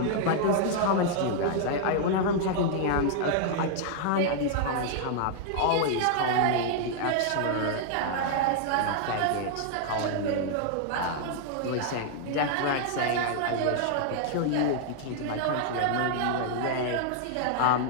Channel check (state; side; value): different; both; correlation 0.00